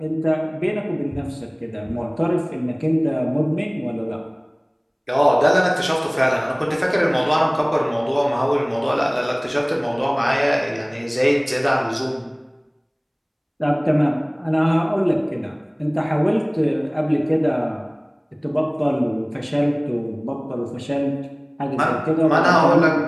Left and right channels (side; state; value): both; identical; correlation 1.00